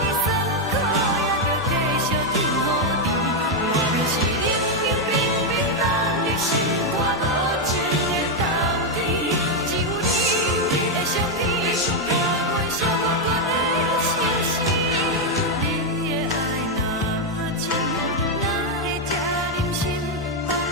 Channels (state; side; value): normal; both; correlation 0.02